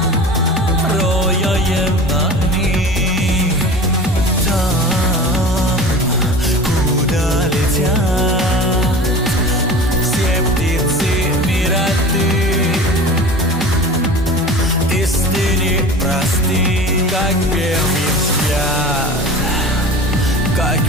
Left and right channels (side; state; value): both; normal; correlation 0.36